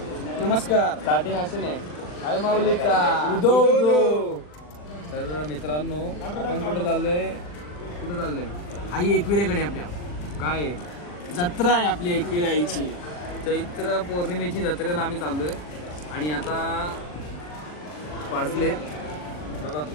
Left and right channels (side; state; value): right; late; 40 ms